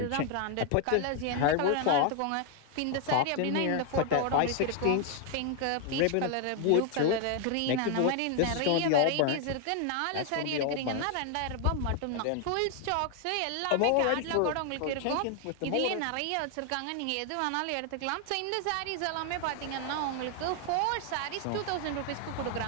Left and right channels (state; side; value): different; both; correlation 0.00